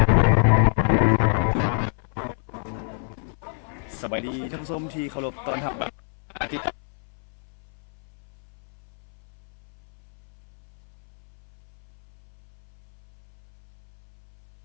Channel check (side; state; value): right; silent; 60 dB below the other